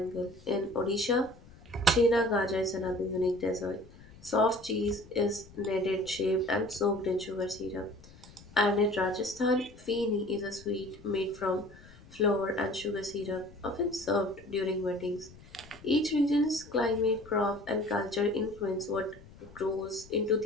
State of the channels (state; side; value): noise; left; rumble, 21 dB below the sound